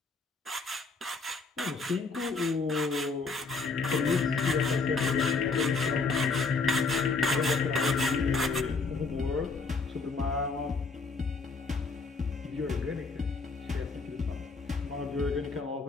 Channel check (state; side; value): quieter; right; 4.2 dB